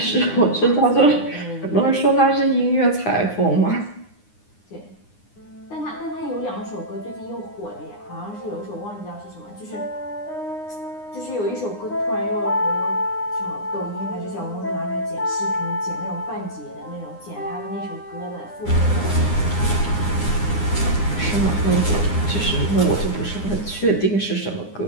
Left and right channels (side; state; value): right; late; 9.8 ms